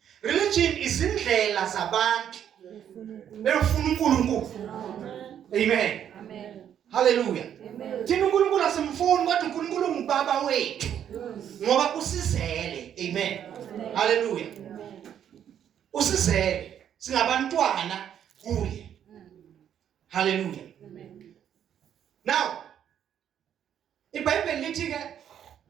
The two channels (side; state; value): left; quieter; 9.5 dB